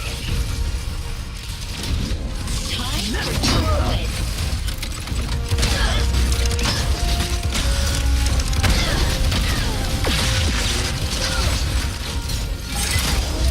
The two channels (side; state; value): both; identical; correlation 1.00